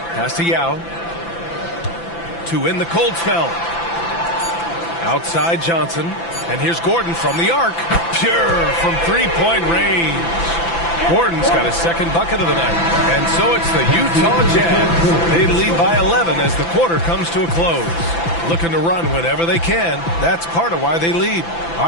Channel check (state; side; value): late; right; 5.9 ms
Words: to Yao. To win the cold spell. Outside Johnson. And here's Gordon from the arc. Pure from three-point range. Gordon's got his second bucket of the night. And so it's the Utah Jazz. They lead by 11 as the quarter comes to a close. Looking to run whenever they can. That's part of why they lead. All